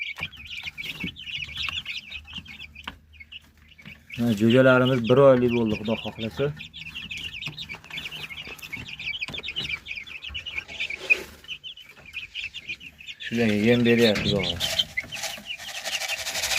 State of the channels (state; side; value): identical; both; correlation 1.00